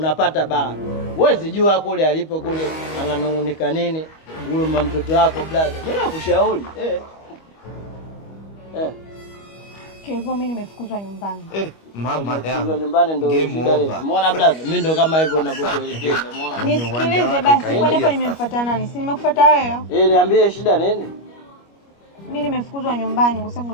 baraka. Huwezi jua kule alipo kule ananungunika nini. Huyo mtoto wako brother. Mimi nakushauri. Kwa hivyo mimi nimefukuzwa nyumbani. Mama yangu. Nimefukuzwa nyumbani ndio shida. Umeona brother? Mimi ndo kama hivyo ninapokuelekeza. Umeona? Nisikilize basi, kwa nini nimemfuata nani? Si nimekufuata wewe? Niambie shida nini? Mimi nimefukuzwa nyumbani kwa sababu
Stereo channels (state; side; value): late; right; 25 ms